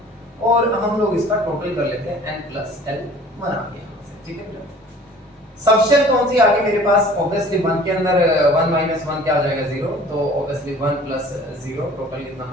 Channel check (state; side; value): normal; both; correlation 0.49